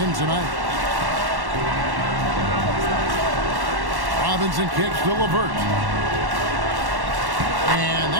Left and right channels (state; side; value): late; left; 1.1 ms